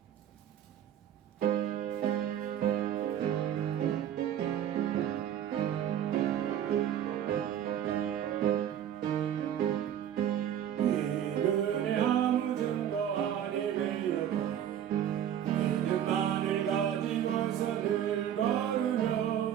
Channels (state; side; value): quieter; left; 10.2 dB